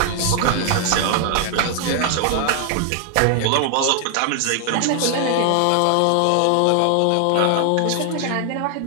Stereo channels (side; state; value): both; different; correlation 0.00